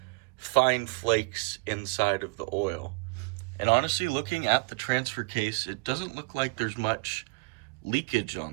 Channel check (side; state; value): left; quieter; 29.0 dB